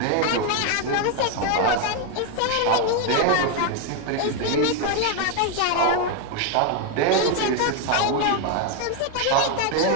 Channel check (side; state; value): both; different; correlation 0.01